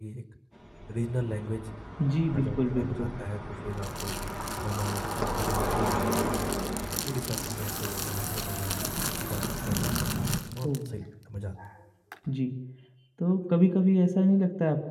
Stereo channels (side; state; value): both; identical; correlation 1.00